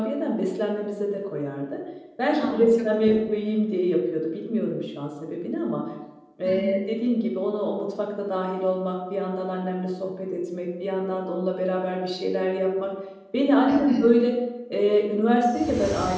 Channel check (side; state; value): both; identical; correlation 1.00